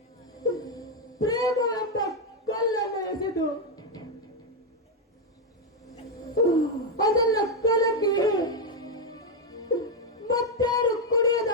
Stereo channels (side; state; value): both; normal; correlation 0.03